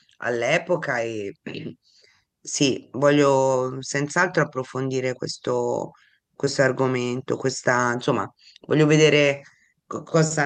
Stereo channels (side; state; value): both; identical; correlation 1.00